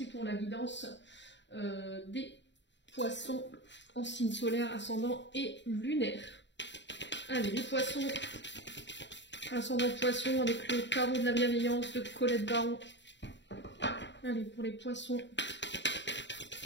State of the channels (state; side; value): late; right; 0.52 ms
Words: pour la guidance des poissons en signe solaire, ascendant et lunaire. Allez, les poissons, ascendant poisson avec le tarot de la bienveillance de Colette Baron. Allez, pour les poissons.